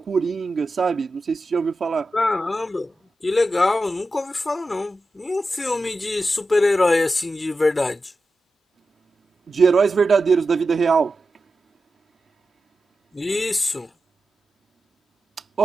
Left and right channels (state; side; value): normal; both; correlation 0.91